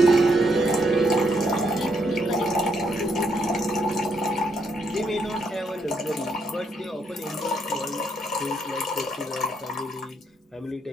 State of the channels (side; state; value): both; normal; correlation 0.75